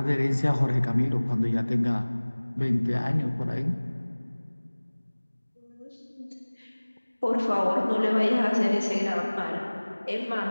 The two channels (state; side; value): inverted; both; correlation -1.00